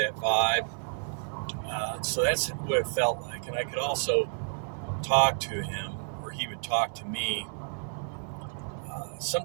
vibe. So that's what it felt like, and I could also talk to him, or he would talk to me.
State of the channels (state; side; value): silent; left; 56 dB below the other